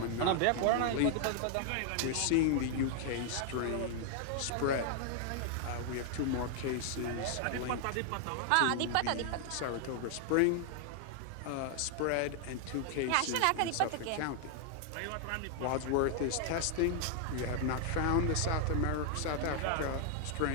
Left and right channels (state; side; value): different; both; correlation 0.00